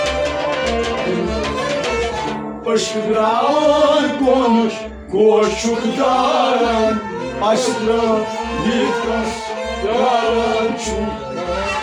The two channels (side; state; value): both; identical; correlation 1.00